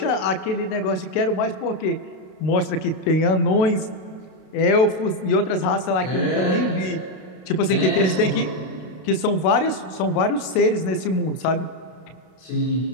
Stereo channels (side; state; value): right; late; 32 ms